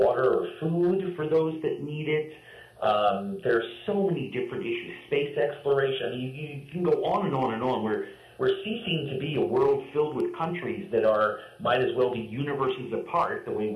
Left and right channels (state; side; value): identical; both; correlation 1.00